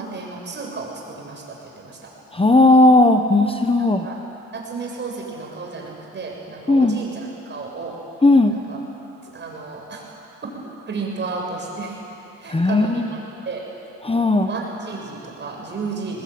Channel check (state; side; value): normal; both; correlation 0.61